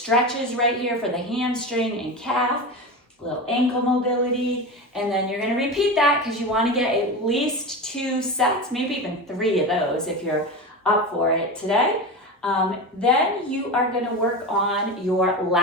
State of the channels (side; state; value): both; normal; correlation 0.24